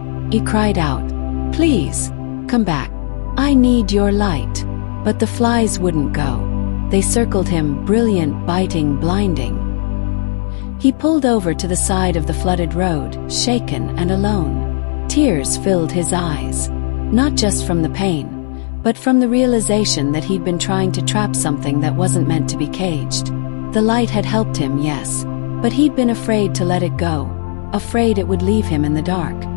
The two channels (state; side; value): silent; right; digital silence